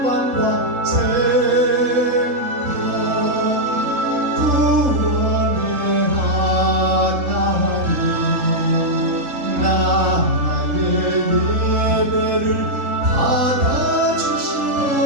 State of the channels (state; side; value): late; left; 3.7 ms